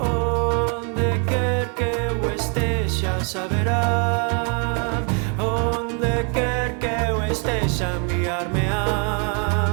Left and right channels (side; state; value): left; quieter; 38.6 dB